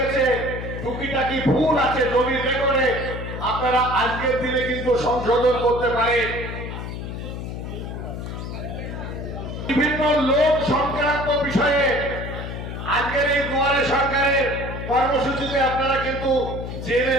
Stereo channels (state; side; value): noise; left; hum, 7 dB below the sound